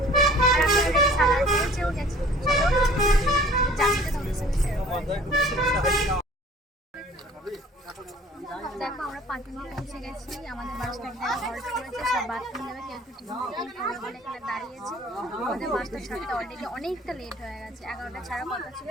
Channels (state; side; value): normal; both; correlation 0.50